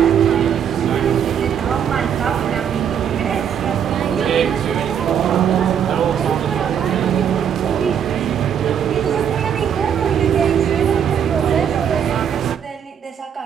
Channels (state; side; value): quieter; left; 8.4 dB